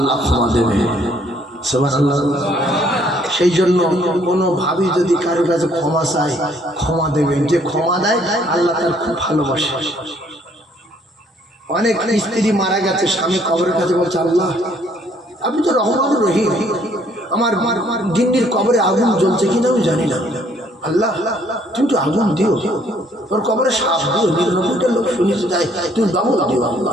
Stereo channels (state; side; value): normal; both; correlation 0.64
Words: ক্ষমা দেবে সুবহানাল্লাহ সেই জন্য কোনো ভাবি যদি কারো কাছে ক্ষমা চায় ক্ষমা দেবেন যে ক্ষমা দেয় আল্লাহ তার খুব ভালোবাসে অনেক স্ত্রী মারা গেছে স্বামী কবরের কাছে বলছে আল্লাহ আপনি তো রহমান রহিম আমার গিন্নির কবরে আগুন জ্বলছে কিনা আমি জানি না আল্লাহ তুমি তো আগুন দিও তোর কবরে সাপ দিও 99টা লোক শুনেছে যায় তুমি বাবু দিও